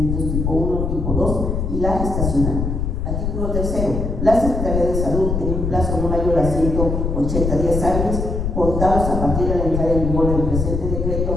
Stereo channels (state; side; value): noise; left; rumble, 1 dB below the sound